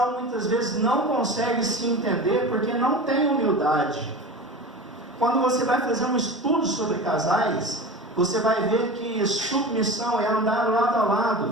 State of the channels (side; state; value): both; normal; correlation 0.31